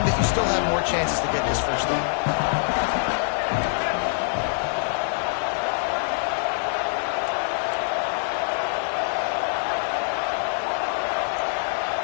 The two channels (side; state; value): right; silent; digital silence